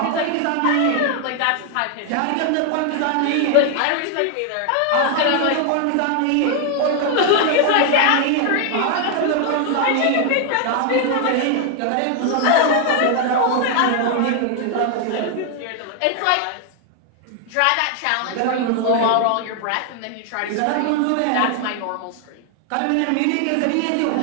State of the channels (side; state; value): both; different; correlation 0.00